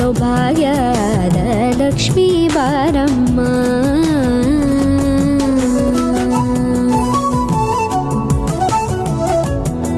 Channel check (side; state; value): both; identical; correlation 1.00